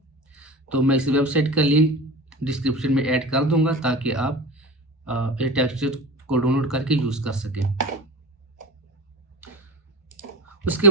तो मैं इस वेबसाइट का लिंक डिस्क्रिप्शन में ऐड कर दूंगा ताकि आप ये टेक्सचर को डाउनलोड करके यूज़ कर सकें। उसके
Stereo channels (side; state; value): both; normal; correlation 0.32